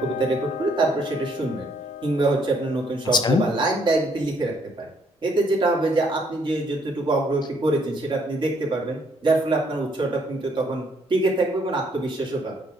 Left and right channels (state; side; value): normal; both; correlation 0.68